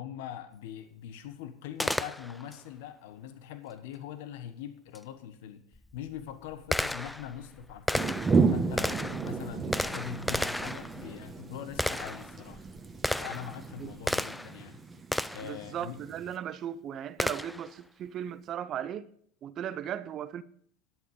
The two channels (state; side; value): normal; both; correlation 0.74